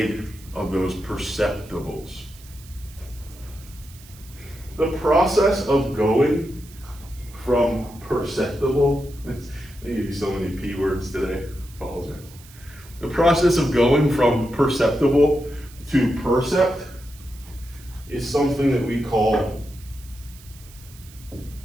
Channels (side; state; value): right; noise; hiss, 22 dB below the sound